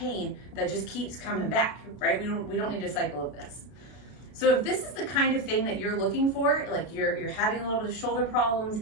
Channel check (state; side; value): late; right; 33 ms